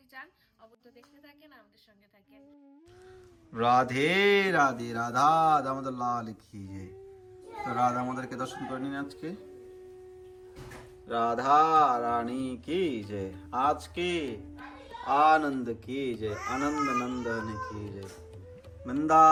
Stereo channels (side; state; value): both; identical; correlation 1.00